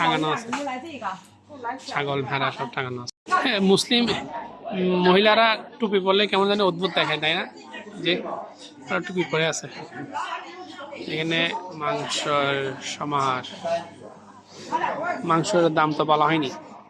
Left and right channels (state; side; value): identical; both; correlation 1.00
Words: আছে, ছাগল ভেড়া সব টাঙানো আছে। মুসলিম মহিলারা টুপি পরলে কেমন জানি অদ্ভুত দেখায়, তাই না? যে টুপি পরে আছে। এখানে মাংসের সমাহার, মাংসের দাম তো বলা হয়নি।